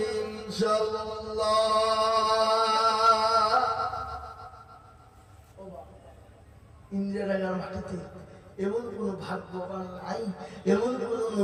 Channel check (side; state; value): both; identical; correlation 1.00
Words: ইনশাআল্লাহ। ইন্দিরানগর মাটিতে এমন কোন ভাগ্যবান নাই, এমন কোন